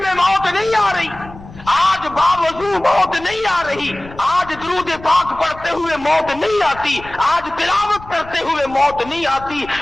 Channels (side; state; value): left; noise; rumble, 17 dB below the sound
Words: موت نہیں آ رہی، آج باوضو موت نہیں آ رہی، آج درود پاک پڑھتے ہوئے موت نہیں آتی، آج تلاوت کرتے ہوئے موت نہیں آتی،